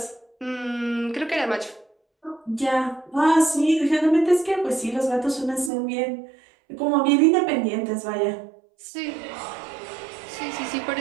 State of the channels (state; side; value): drops out; left; at 5.7 s